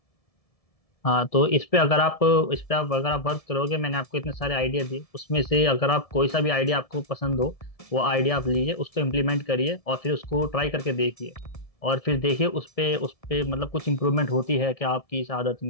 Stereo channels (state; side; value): late; right; 1.7 ms